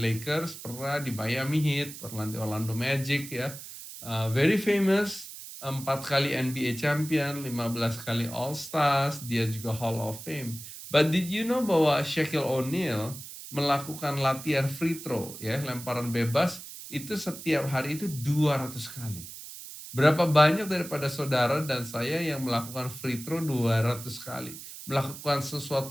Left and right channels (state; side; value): noise; right; hiss, 12 dB below the sound